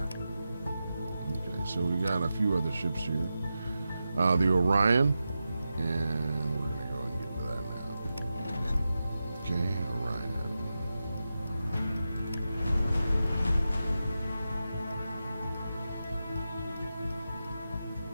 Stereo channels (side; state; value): both; inverted; correlation -0.91